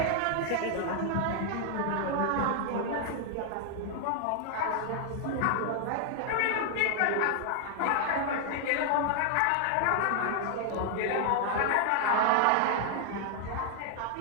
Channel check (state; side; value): different; both; correlation 0.00